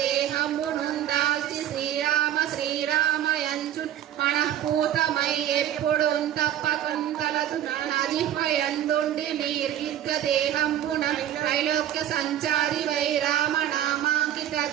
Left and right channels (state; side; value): quieter; left; 11.2 dB